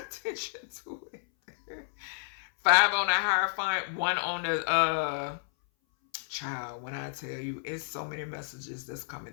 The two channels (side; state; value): right; silent; 57 dB below the other